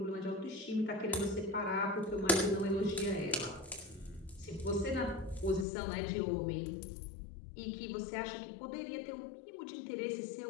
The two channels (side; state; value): right; drops out; at 5.7 s